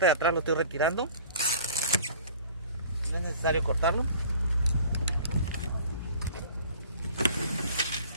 de atrás lo estoy retirando. No es necesario cortarlo.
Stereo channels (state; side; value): inverted; both; correlation -0.47